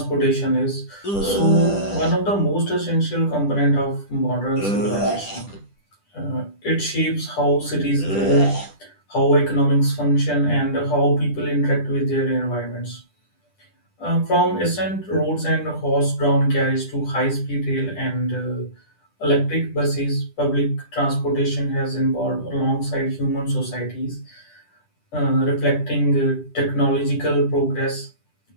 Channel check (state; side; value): late; right; 10 ms